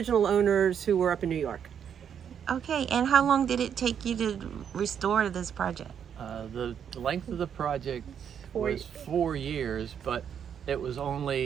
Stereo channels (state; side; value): quieter; left; 8.2 dB